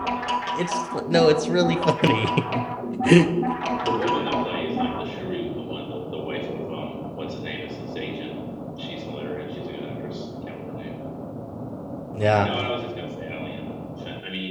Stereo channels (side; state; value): both; identical; correlation 1.00